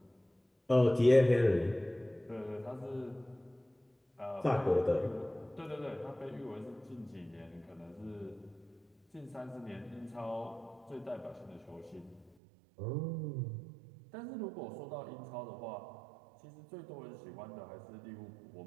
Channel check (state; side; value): drops out; left; at 12.4 s